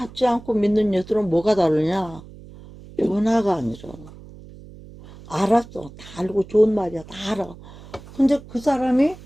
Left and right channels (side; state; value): right; noise; hum, 19 dB below the sound